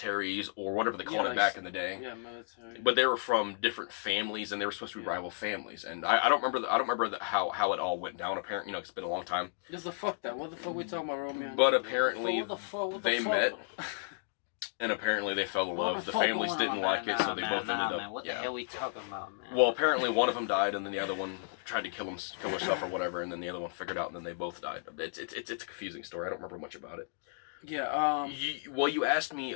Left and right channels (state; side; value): silent; right; digital silence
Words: or whatever they called it back in the day. Yeah, military. But they were from different families and they were supposed to be rival families. And I don't remember how it all went down. Apparently, you know, it's been a long time. Just the fuck that. What the fuck we talking about, Romeo? But apparently they met. And apparently they fell in love. The families didn't like it, so they both ended up. Man. What the hell are we talking about, man? Well, apparently one of them died, and then the other one tried to kill herself or whatever, and then the other one figured out, and then they both died. It's a confusing story. I don't remember much about it. Yeah. You asked me